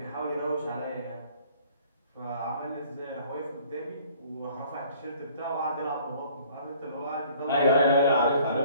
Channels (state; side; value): inverted; both; correlation -0.56